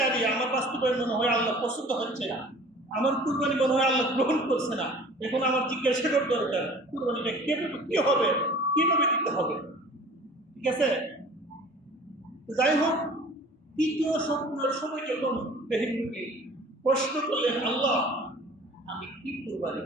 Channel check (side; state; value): both; normal; correlation 0.46